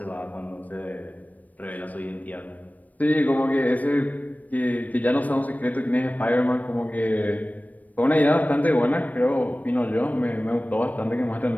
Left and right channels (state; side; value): late; right; 0.076 ms